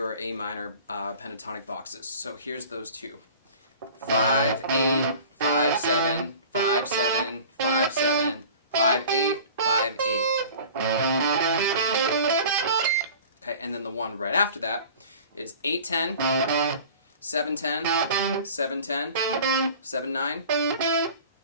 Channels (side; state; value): both; inverted; correlation -0.42